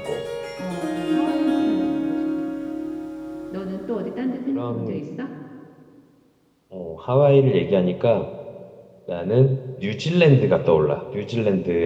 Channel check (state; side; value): identical; both; correlation 1.00